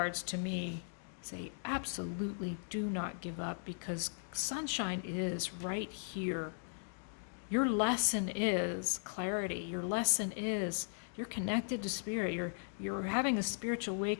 to me say absolutely do not give up, because sunshine is right here. Your lesson is clarity. Your lesson is you're connected to Spirit. You're having a spiritual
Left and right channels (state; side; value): silent; right; digital silence